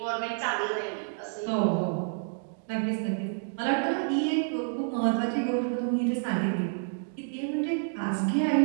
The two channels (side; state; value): left; silent; digital silence